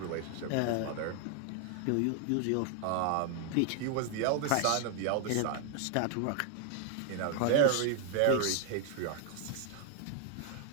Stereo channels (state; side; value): different; both; correlation 0.00